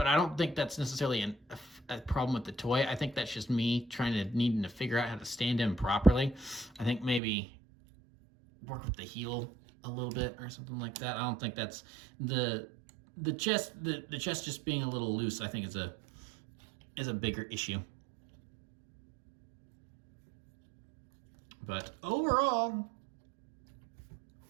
I don't think that's necessarily a problem with the toy. I think that's just me needing to figure out how to stand him properly. I think maybe work with the heel a little bit or something like that. I don't think that's the chest just being a little loose, I think is a bigger issue. But overall,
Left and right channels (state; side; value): drops out; left; at 7.2 s